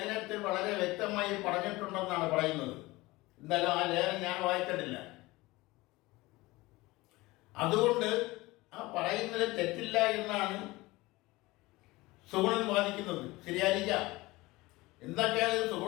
വളരെ വ്യക്തമായി പറഞ്ഞിട്ടുണ്ടെന്നാണ് പറയുന്നത്. എന്നാലും ആ ലേഖനം ഞാൻ വായിച്ചിട്ടില്ല. അതുകൊണ്ട് ആ പറയുന്നതിൽ തെറ്റില്ല എന്നാണ് സുഗുണൻ വാദിക്കുന്നത്. ശരിയായിരിക്കാം. എന്തൊക്കെയായാലും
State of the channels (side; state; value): right; quieter; 20.7 dB